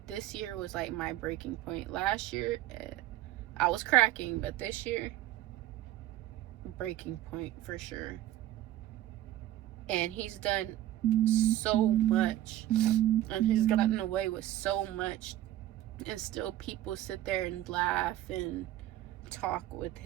this year was like my breaking point. Last year, I was cracking, but this year, breaking point for sure. And he's done so much, and he's gotten away with so much, and still people sit there and laugh and talk with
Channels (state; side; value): quieter; left; 13.9 dB